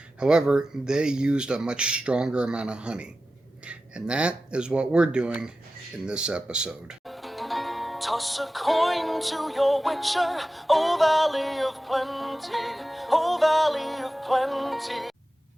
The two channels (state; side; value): normal; both; correlation 0.94